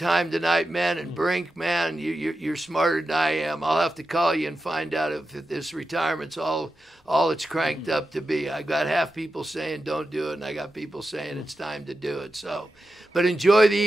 tonight, man. And Brink, man, you're smarter than I am. I'll have to call you and find out if this retirement's all it's cranked up to be. I got half people saying don't do it, and I got people saying it's time to do it. So, but enjoy the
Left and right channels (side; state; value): both; normal; correlation 0.90